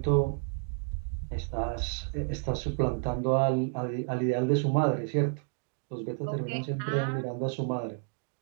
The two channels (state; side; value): silent; left; digital silence